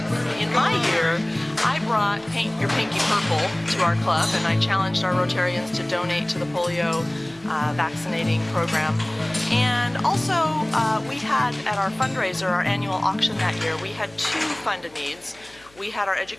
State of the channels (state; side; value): noise; left; hum, 29 dB below the sound